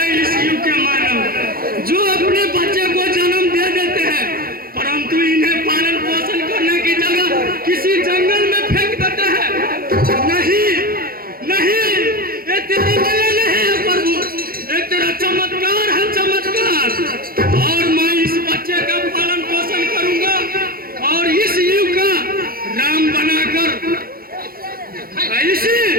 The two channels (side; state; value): left; late; 0.43 ms